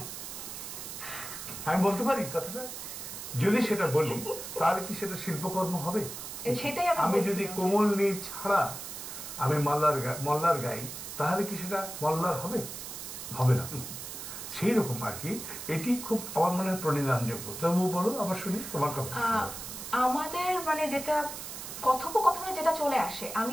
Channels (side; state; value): right; noise; hiss, 9 dB below the sound